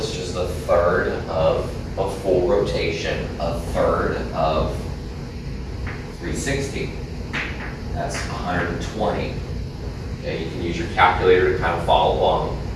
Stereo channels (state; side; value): identical; both; correlation 1.00